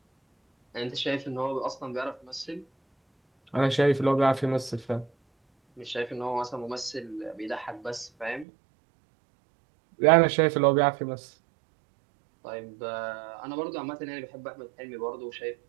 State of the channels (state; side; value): drops out; left; at 8.5 s